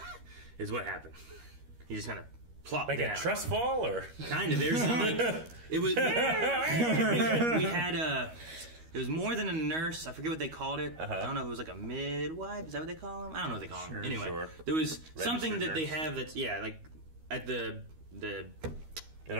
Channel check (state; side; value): late; left; 13 ms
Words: is what happened. He just kind of plopped like down. a trust fall, or kind of. There's some, like, it was. we had it was more than a nurse. I forget what they called it. I don't know if it was like a midwife. Is that what they call them? I don't know what they call them. Anyway, there was something that they have that's like at the in